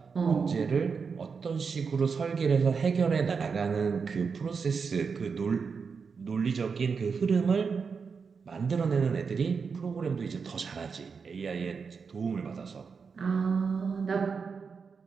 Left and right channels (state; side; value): quieter; left; 5.5 dB